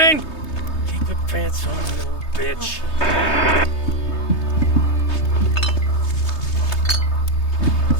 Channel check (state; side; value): late; right; 3.2 ms